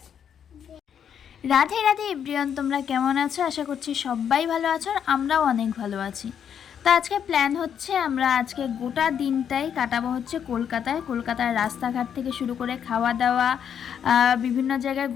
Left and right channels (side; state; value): right; quieter; 8.4 dB